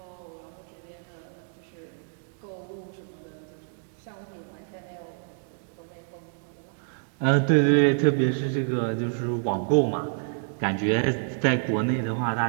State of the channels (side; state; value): left; silent; digital silence